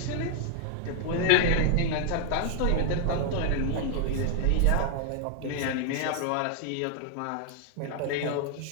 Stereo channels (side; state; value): both; different; correlation 0.00